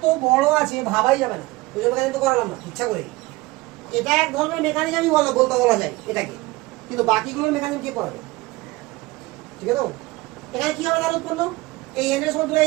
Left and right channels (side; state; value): left; quieter; 21.4 dB